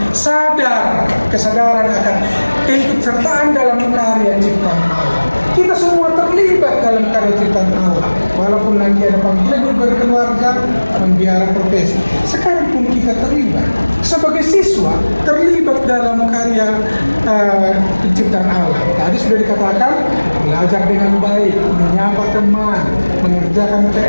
kesadaran akan keikutsertaan dalam karya ciptaan Allah. Kita semua terlibat dalam karya ciptaan Allah, walaupun nanti ada panggilan hidup berkeluarga, membiara profesi. Sekarang pun kita terlibat sebagai siswa, terlibat dalam karya penciptaan Allah. Tadi sudah dikatakan, belajar dengan baik, menyapa teman, mengerjakan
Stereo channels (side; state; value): both; inverted; correlation -1.00